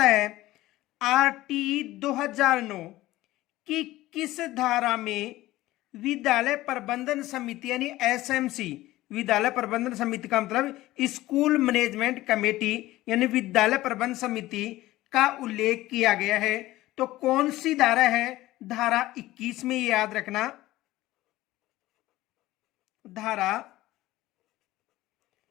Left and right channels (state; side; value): quieter; right; 16.9 dB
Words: है आरटी 2009 की किस धारा में विद्यालय प्रबंधन समिति यानी एसएमसी, विद्यालय प्रबंधन समिति का मतलब स्कूल मैनेजमेंट कमेटी यानी विद्यालय प्रबंधन समिति का उल्लेख किया गया है। तो कौन सी धारा है? धारा 21 में, याद रखना, धारा